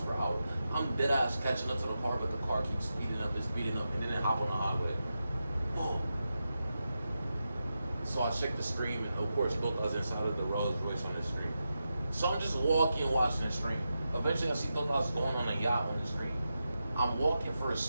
per hour. I'm dead ass catching up to the car, but the car keeps speeding up, and then it hop on the highway. Whoa. So I check the screen, and of course, both us inside of the Rolls Royce on the screen. So I'm just walking, watching the screen. Eventually, I see both of us going on a yacht on the screen. I'm walking for a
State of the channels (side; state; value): both; inverted; correlation -0.89